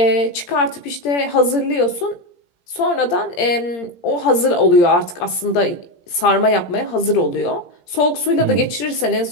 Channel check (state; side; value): late; right; 17 ms